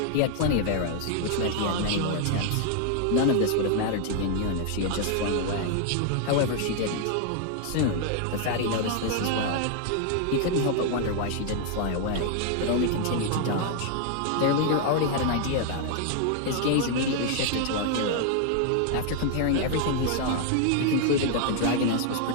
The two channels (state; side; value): different; both; correlation 0.00